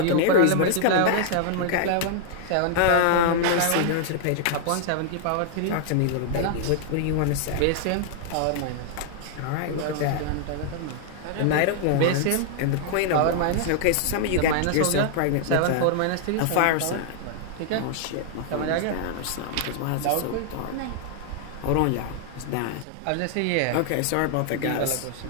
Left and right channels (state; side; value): different; both; correlation 0.00